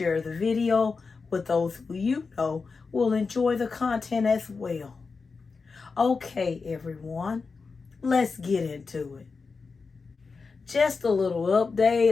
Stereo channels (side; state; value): right; quieter; 4.6 dB